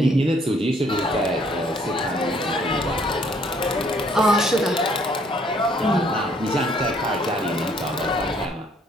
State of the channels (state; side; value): normal; both; correlation 0.64